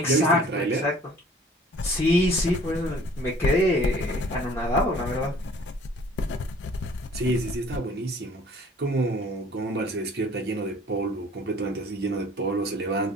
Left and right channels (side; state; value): both; normal; correlation 0.52